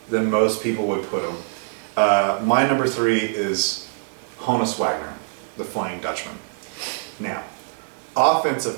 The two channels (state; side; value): silent; left; digital silence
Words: than most people would put him. My number 3 is Honus Wagner, the Flying Dutchman. Now,